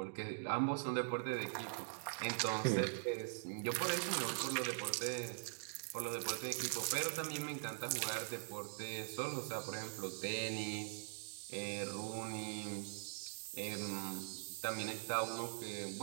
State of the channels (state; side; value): silent; left; digital silence